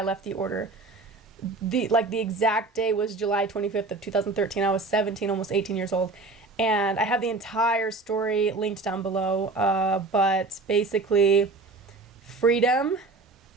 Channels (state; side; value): quieter; left; 3.6 dB